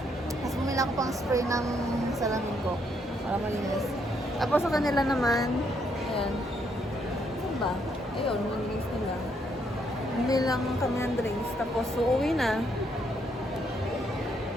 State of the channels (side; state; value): both; normal; correlation 0.73